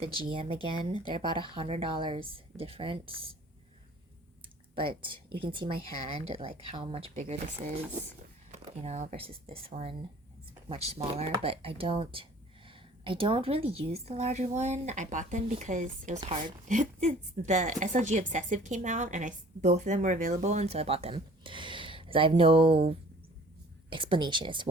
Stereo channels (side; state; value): both; normal; correlation 0.51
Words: GM again. They're about $100 difference. But you can see my hand, like how much bigger this is, versus this one. It's much smaller, but I don't really use the larger one. I bought them because it was hard. The SLG Obsessive came out, and both of them were available, and so I bought them. Because I have no explanation as to